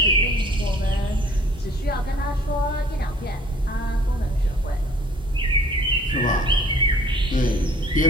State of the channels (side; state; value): both; normal; correlation 0.54